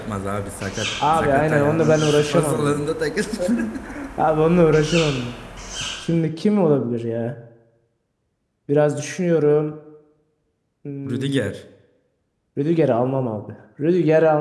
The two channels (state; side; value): identical; both; correlation 1.00